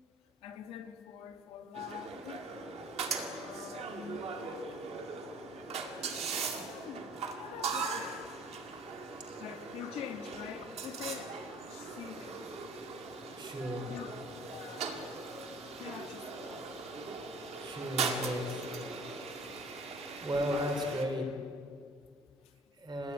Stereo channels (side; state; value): both; normal; correlation 0.49